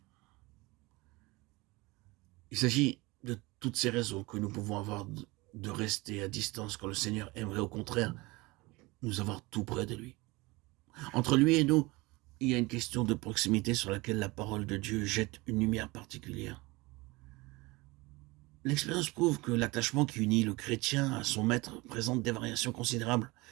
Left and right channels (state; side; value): quieter; left; 23.1 dB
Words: Il s'agit de toutes ces raisons que nous pouvons avoir de rester à distance quand le Seigneur aimerait au contraire nous avoir tout près de lui. Entre lui et nous, il y a une question de proximité sur laquelle la parole de Dieu jette une lumière particulière. L'expérience prouve que l'attachement qui unit le chrétien à son maître présente des variations considérables